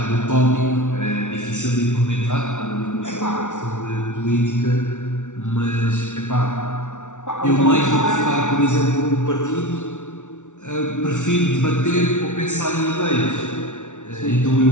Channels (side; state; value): right; late; 0.86 ms